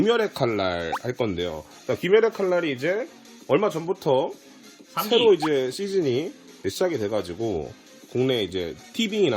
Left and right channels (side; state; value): both; identical; correlation 1.00